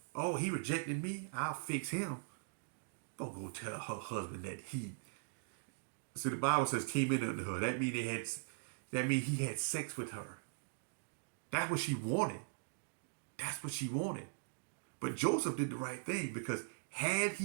Oh, he rejected me? I'll fix him. Don't go tell her husband that he. See, the Bible says came in under her. That means he had sex with her. That's what she wanted. That's what she wanted. But Joseph did the right thing, because had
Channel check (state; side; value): silent; left; digital silence